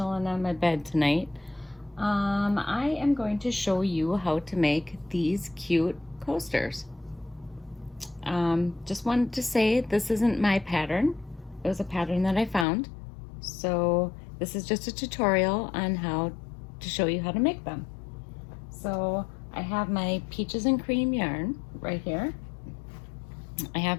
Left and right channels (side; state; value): right; drops out; at 12.7 s